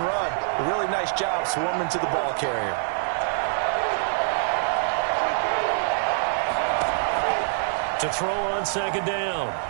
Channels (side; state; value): left; silent; 62 dB below the other